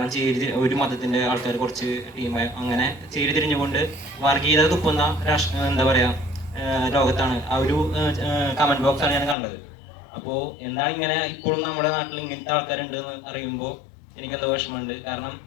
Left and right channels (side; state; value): right; drops out; at 9.3 s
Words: ഒരു മതത്തിൻ്റെ ആൾക്കാർ കുറച്ച് ടീമായി അങ്ങനെ ചേരിതിരിഞ്ഞുകൊണ്ട് വർഗീയത തുപ്പുന്ന എന്താ പറയുക ലോകത്താണ് ആ ഒരു കമൻറ്റ് ബോക്സാണ് ഞാൻ കണ്ടത്. അപ്പോൾ എന്താണ് ഇങ്ങനെ ഇപ്പോഴും നമ്മുടെ നാട്ടിൽ ഇങ്ങനത്തെ ആൾക്കാരുണ്ടെന്ന് അറിയുമ്പോൾ എനിക്കെന്തോ വിഷമമുണ്ട്. കാരണം